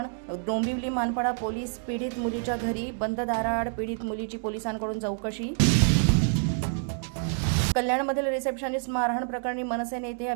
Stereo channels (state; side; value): silent; left; digital silence